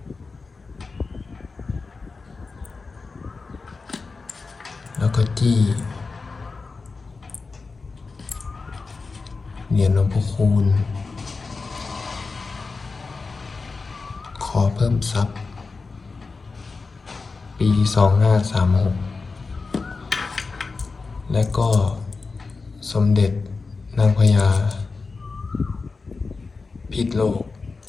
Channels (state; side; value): quieter; right; 4.2 dB